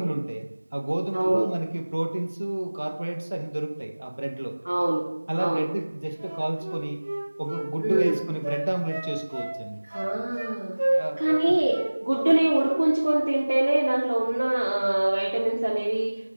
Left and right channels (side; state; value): both; inverted; correlation -1.00